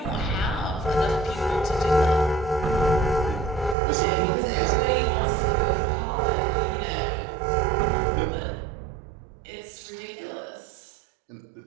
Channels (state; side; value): drops out; left; at 3.8 s